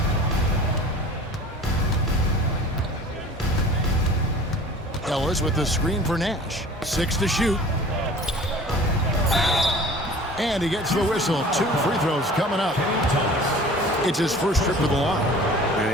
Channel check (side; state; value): both; normal; correlation 0.44